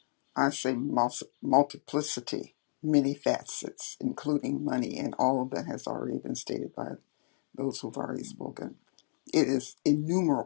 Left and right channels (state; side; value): silent; right; 56 dB below the other